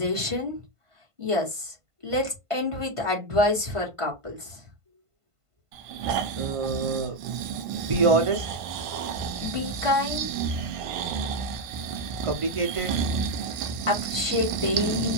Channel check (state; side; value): late; left; 1.5 ms